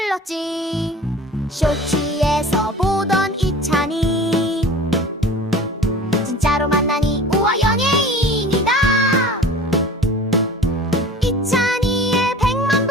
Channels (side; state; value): both; normal; correlation 0.41